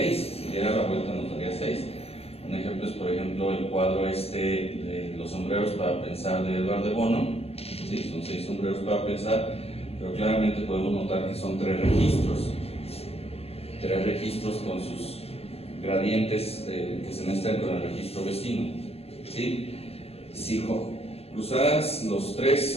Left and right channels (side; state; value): right; late; 0.29 ms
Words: Si diera la vuelta, nos daría 6. Un ejemplo es, por ejemplo, el cuadro de los sombreros para pensar de Edward de Bono. Sí, son 6 sombreros para pensar, pero claramente podemos notar que son 3 registros. 3 registros con sus gradientes que se mezclan con el registro vecino, ¿sí? Si cruzaras los